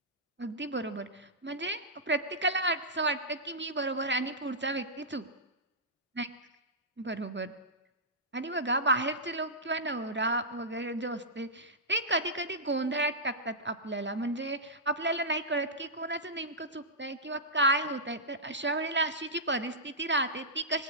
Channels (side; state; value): both; normal; correlation -0.14